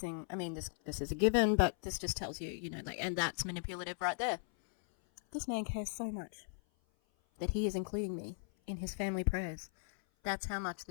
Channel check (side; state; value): right; silent; 53 dB below the other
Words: I mean, this is a given, but this just tells you, you know, like, and that's manipulative right there. This man cares so much that he is including me in his family prayers. That's how much